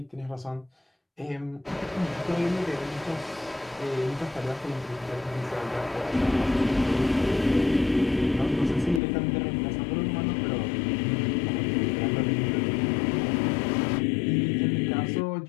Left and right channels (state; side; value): drops out; right; at 9.0 s